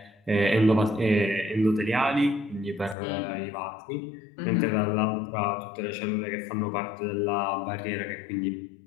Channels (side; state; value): right; drops out; at 3.0 s